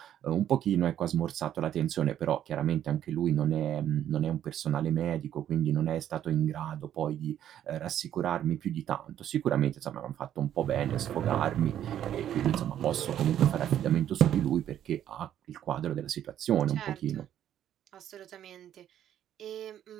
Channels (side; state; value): left; quieter; 10.8 dB